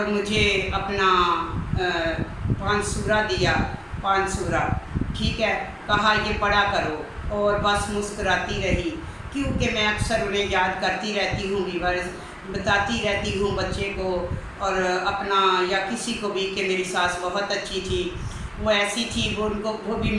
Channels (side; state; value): both; identical; correlation 1.00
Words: मुझे अपना 5 सूरा दिया, 5 सूरा। ठीक है, कहा ये पढ़ा करो और बस मुस्कुराती रही, क्योंकि मैं अक्सर उन्हें याद करती रहती हूँ वीवर्स, बताती रहती हूँ बच्चे को और अपना या किसी को भी कि मेरी सास बहुत अच्छी थी। वो ऐसी थी, वो